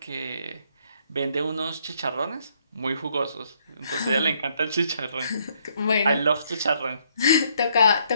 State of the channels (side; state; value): both; inverted; correlation -0.70